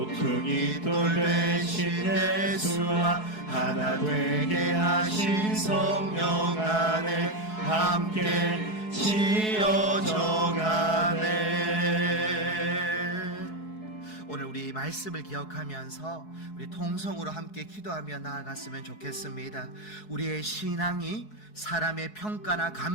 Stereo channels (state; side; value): late; right; 4.7 ms